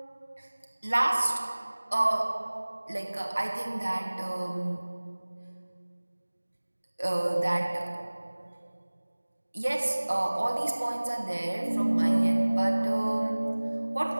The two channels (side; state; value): both; inverted; correlation -1.00